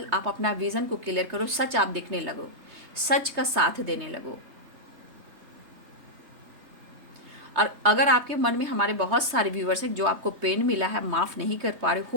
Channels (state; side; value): late; left; 3.3 ms